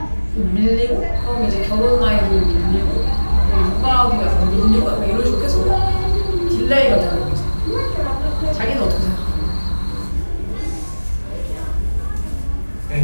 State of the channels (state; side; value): inverted; both; correlation -1.00